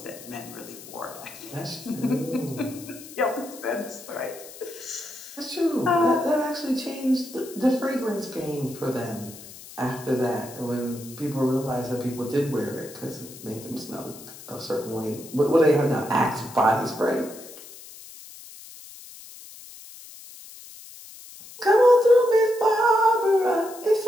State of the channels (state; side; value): noise; left; hiss, 17 dB below the sound